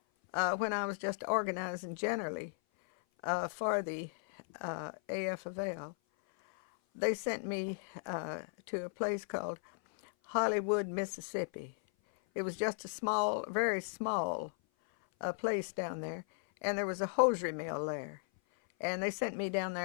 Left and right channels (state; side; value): silent; right; 54 dB below the other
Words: When I was just organizing generally for the AF of L, they sent me to a place called Hollywood, Mississippi. It was just a small, very small place down there, and there was a hosiery mill there. And they sent me down